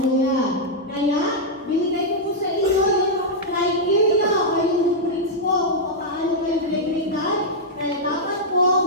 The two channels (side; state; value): both; normal; correlation -0.05